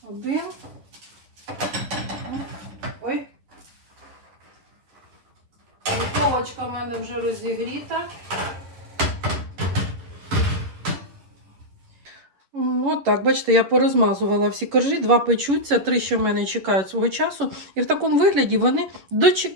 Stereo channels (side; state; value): left; late; 11 ms